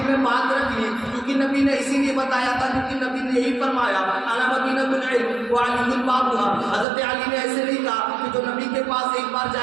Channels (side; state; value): left; drops out; at 6.9 s